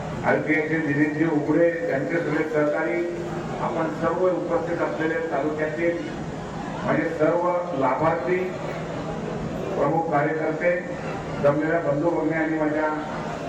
आरपीआयचे दिनेशजी उघडे, त्यांचे सगळे सहकारी, आपण सर्व उपस्थित असलेले तालुक्यातील म्हणजे सर्व लाभार्थी, प्रमुख कार्यकर्ते, जमलेल्या बंधू भगिनी आणि माझ्या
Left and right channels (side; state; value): both; identical; correlation 1.00